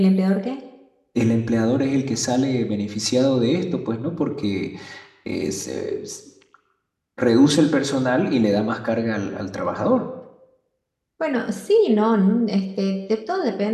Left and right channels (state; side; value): identical; both; correlation 1.00